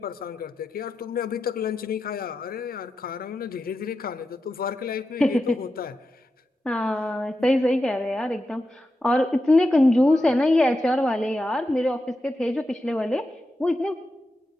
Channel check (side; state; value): both; normal; correlation 0.89